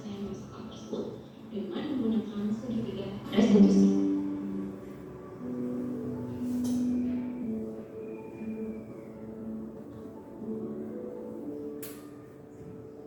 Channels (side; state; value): both; identical; correlation 1.00